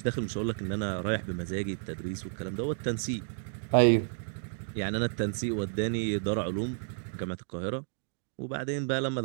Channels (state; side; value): silent; left; digital silence